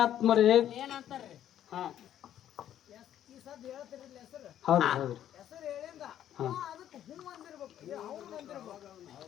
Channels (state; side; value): quieter; right; 11.0 dB